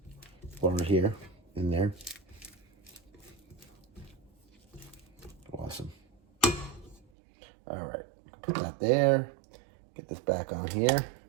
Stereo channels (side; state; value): left; drops out; at 7.1 s